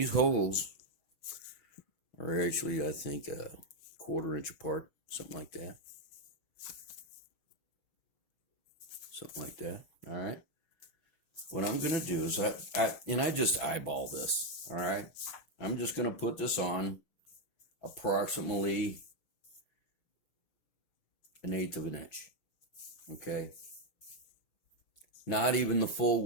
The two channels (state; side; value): late; right; 6.0 ms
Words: holes are actually, I think, a 1/4 inch apart, something like that. Something like that. All right. What I'm going to do is I just eyeball this. All right. I'm just going to put this on approximately 1/8 of an inch. Okay. Not even the full